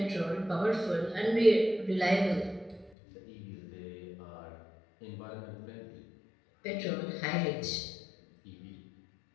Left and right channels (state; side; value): drops out; right; at 2.9 s